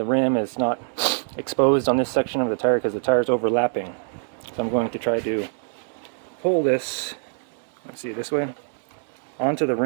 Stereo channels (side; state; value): left; silent; digital silence